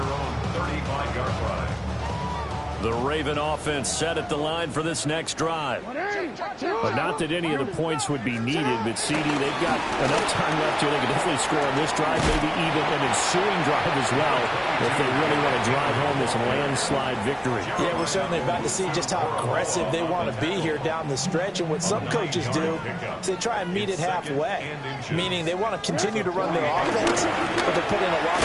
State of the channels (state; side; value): identical; both; correlation 1.00